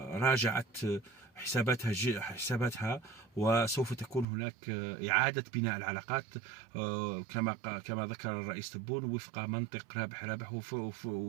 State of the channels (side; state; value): left; drops out; at 4.2 s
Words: راجعت حساباتها، وسوف تكون هناك إعادة بناء العلاقات كما ذكر الرئيس تبون وفق منطق رابح رابح،